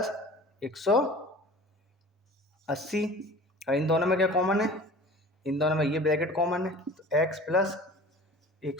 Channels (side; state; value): both; normal; correlation 0.42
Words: 180। और इन दोनों में क्या कॉमन है, इन दोनों में ये ब्रैकेट कॉमन है। तो x प्लस